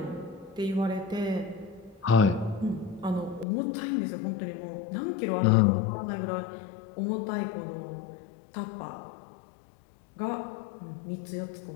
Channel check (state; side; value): drops out; right; at 3.5 s